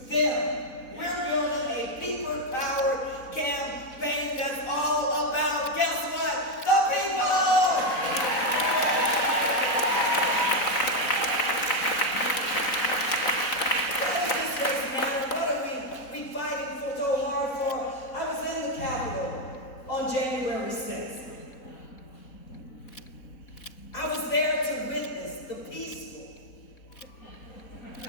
them. We're building a people-powered campaign that's all about, guess what? The people! What does this race matter? What are we fighting for so hard for? I was in the Capitol on January 6th. I was there to witness the peaceful.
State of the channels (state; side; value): late; right; 4.0 ms